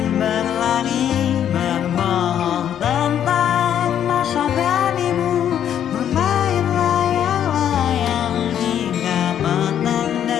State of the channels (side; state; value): right; quieter; 9.8 dB